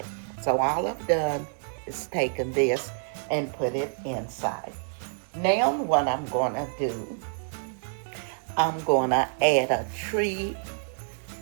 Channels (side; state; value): left; silent; digital silence